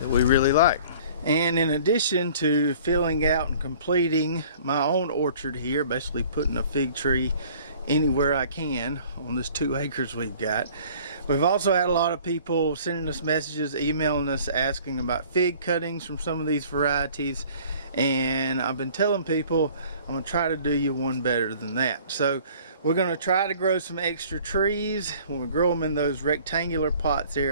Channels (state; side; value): inverted; both; correlation -0.51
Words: we really like. And in addition to filling out and completing my own orchard here, basically putting a fig tree anywhere I can on this 2 acres we've got, we've also had a lot of people sending us messages, emailing us, asking about fig cuttings from some of these varieties. And I've been telling people I'm going to try to do you one better than that. So we're going to try to grow some extra trees. When we grow them in those rectangular pots